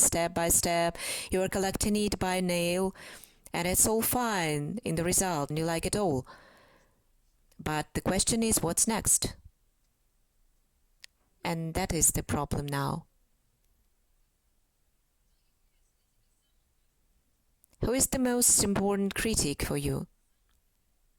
by step. You are collecting it by nail, and it's all fine in the result, and you like it all. But the question is, what's next? And that is the problem now. Who is the most important critic for you?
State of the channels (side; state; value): both; identical; correlation 1.00